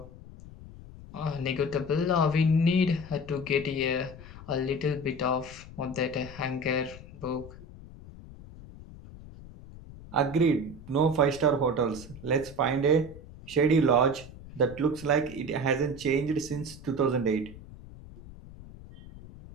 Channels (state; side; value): noise; left; rumble, 17 dB below the sound